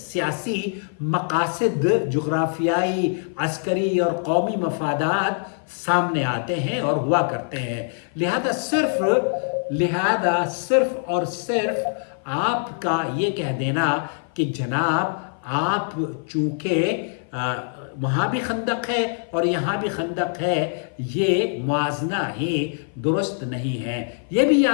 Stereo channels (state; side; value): silent; right; 56 dB below the other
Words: مقاصد، جغرافیائی، عسکری اور قومی مفادات سامنے آتے ہیں اور ہوا کرتے ہیں۔ لہذا صرف اور صرف آپ کا یہ کہہ دینا کہ جناب آپ چونکہ وہاں بھی خندق ہے اور یہاں بھی خندق ہے، یہ موازنہ ہی درست نہیں ہے۔ یہ بھی